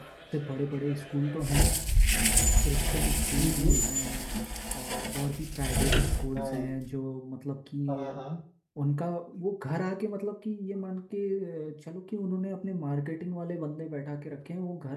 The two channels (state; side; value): identical; both; correlation 1.00